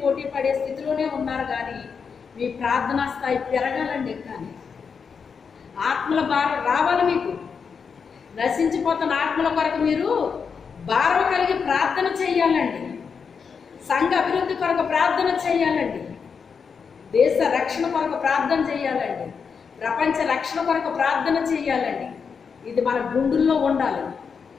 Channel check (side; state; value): right; quieter; 6.0 dB